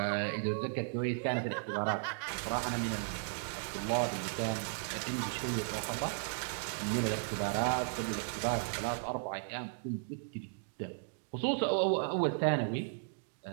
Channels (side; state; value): left; silent; digital silence